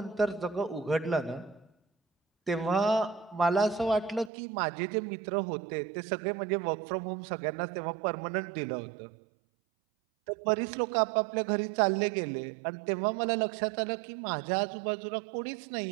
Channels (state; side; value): drops out; left; at 4.3 s